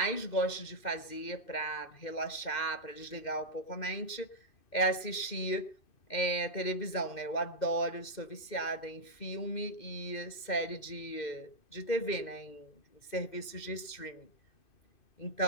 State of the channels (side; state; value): right; late; 2.6 ms